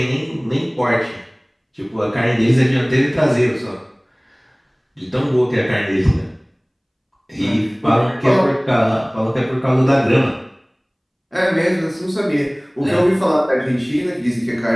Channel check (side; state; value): both; identical; correlation 1.00